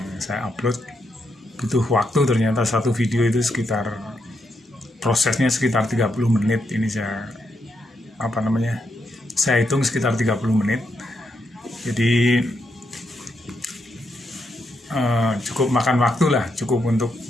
saya upload. Butuh waktu, ternyata satu video itu prosesnya sekitar 30 menit. Ini saya hitung sekitar 30 menit. Jadi cukup makan waktu lah, cukup untuk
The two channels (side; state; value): both; normal; correlation 0.81